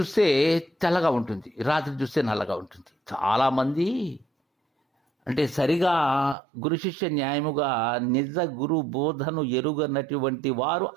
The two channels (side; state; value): left; drops out; at 6.4 s